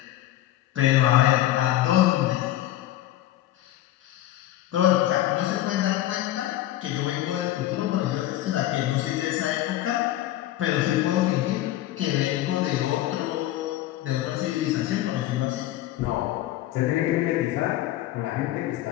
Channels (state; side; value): quieter; right; 14.2 dB